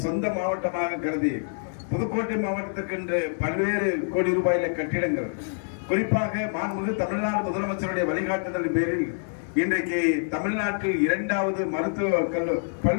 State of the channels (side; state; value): right; silent; digital silence